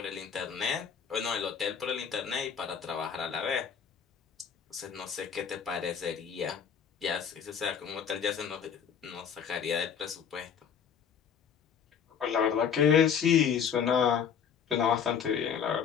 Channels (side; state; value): right; quieter; 7.4 dB